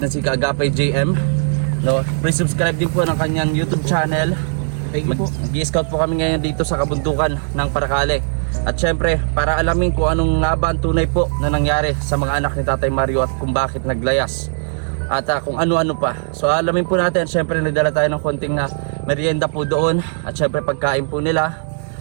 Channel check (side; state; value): left; silent; digital silence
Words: si Kaagapay JM, no? Please subscribe din po ng kanyang YouTube channel. Mag-i-scout po kami ngayon dito sa kabundukan ng Paracale. At syempre para alamin kung anong nga ba ang tunay po na nangyari sa mga anak ni Tatay Mario at kung bakit naglayas at kung ano-ano pa. So alamin po natin. Syempre nagdala tayo ng konting merienda po doon at syempre pagkain po nila.